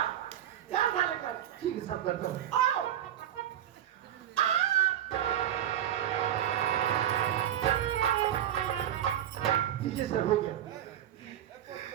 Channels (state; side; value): quieter; left; 11.0 dB